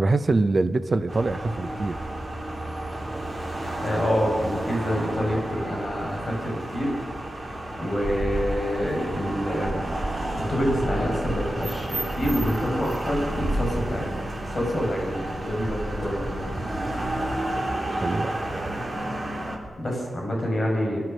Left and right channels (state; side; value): normal; both; correlation 0.92